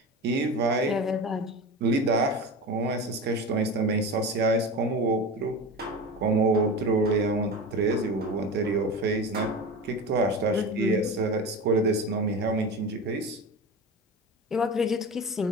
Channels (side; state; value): both; normal; correlation 0.28